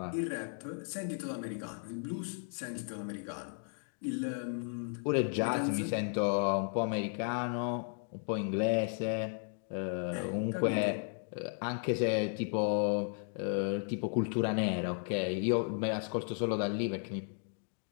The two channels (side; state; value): right; silent; 55 dB below the other